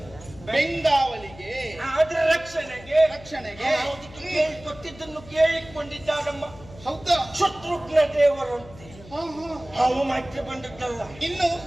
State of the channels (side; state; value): left; noise; hum, 19 dB below the sound